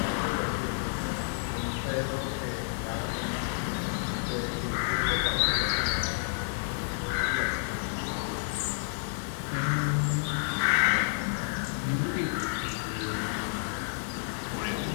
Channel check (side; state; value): right; silent; digital silence